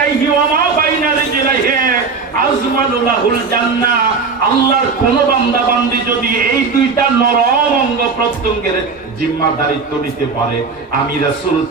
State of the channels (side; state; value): left; quieter; 4.8 dB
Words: ওয়া মা বাইনা রিজলাইহি আজমানু লাহুল জান্নাহ। আল্লাহর কোন বান্দা বান্দি যদি এই 2টা নরম অঙ্গ প্রত্যঙ্গের জিম্মাদারিত্ব নিতে পারে, আমি রাসূল